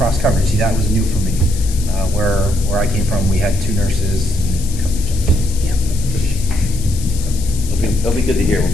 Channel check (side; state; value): left; noise; hiss, 13 dB below the sound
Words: coverage. See, that was new for me. Where I came from, we had 2 nurses and a couple of jobs. Yeah. It'll be good to hear